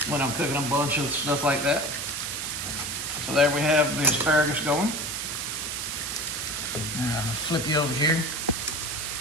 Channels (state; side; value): noise; right; hiss, 3 dB below the sound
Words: when I'm cooking a bunch of stuff like that. So there we have the asparagus going. Now I'll flip you over here.